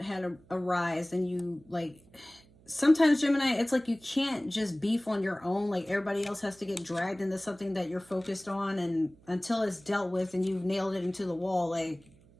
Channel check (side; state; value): right; noise; hum, 27 dB below the sound